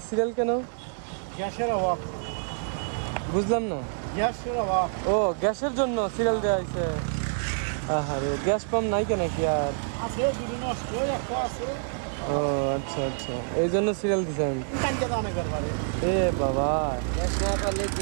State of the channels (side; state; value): left; silent; digital silence